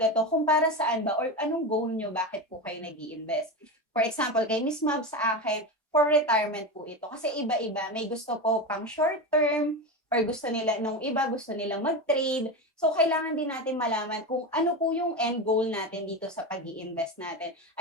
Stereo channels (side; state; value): both; normal; correlation 0.20